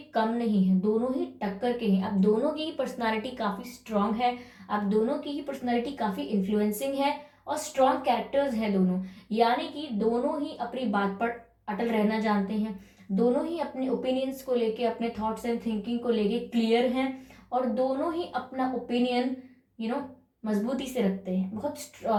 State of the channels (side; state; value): both; identical; correlation 1.00